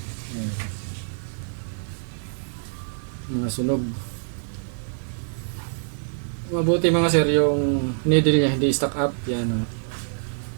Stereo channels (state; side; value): silent; left; 62 dB below the other